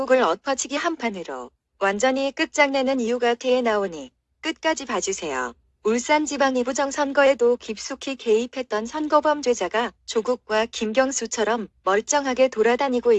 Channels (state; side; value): identical; both; correlation 1.00